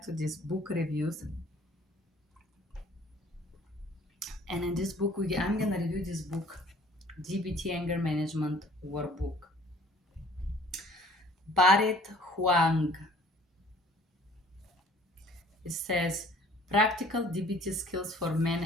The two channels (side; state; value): both; normal; correlation 0.54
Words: to this book reviews. And in this book I'm gonna review this book, DBT Anger Management Workbook. Barret Huang. It says practical DBT skills for men